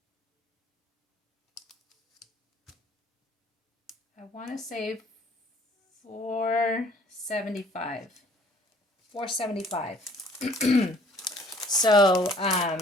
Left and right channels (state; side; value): normal; both; correlation 0.58